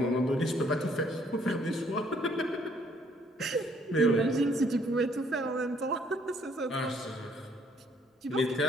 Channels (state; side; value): normal; both; correlation 0.65